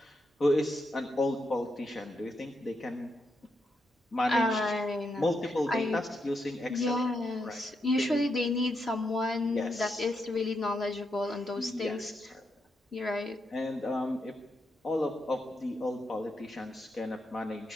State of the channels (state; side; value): normal; both; correlation 0.82